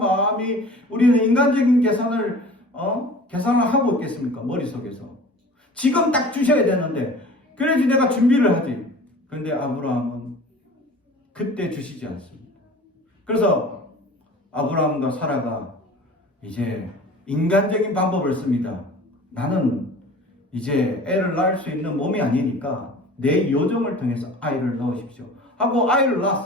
우리는 인간적인 계산을 하고 있겠습니까? 머릿속에서. 지금 딱 주셔야 되는데 그래야지 내가 준비를 하지. 근데 아브라함은 그때 주시지 않습니다. 그래서 아브라함과 사라가 이제 인간적인 방법을 씁니다. 나는 이제 애를 낳을 수 있는 몸이 아니니까 내 요정을 통해서 아이를 넣으십시오 하고 아이를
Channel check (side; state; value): both; normal; correlation 0.42